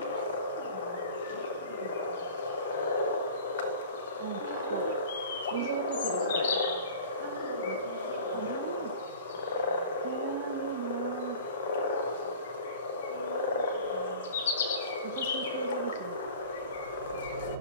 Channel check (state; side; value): inverted; both; correlation -0.41